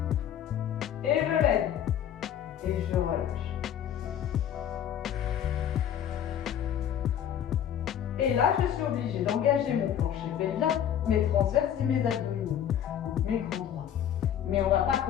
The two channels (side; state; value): right; quieter; 9.7 dB